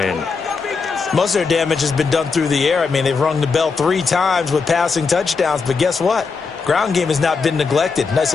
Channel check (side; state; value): right; quieter; 4.9 dB